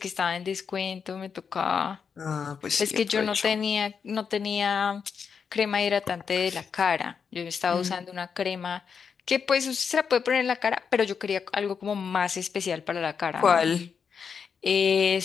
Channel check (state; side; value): quieter; right; 6.3 dB